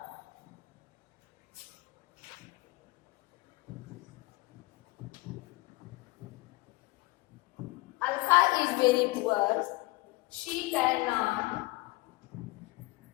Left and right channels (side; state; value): right; quieter; 22.3 dB